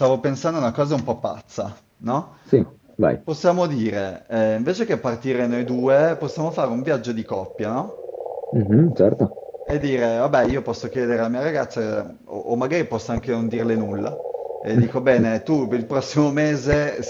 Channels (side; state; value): both; identical; correlation 1.00